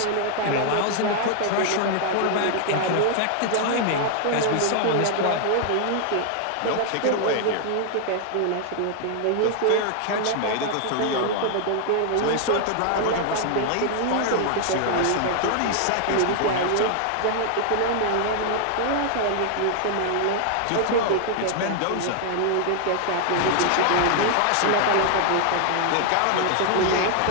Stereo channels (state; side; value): different; both; correlation 0.00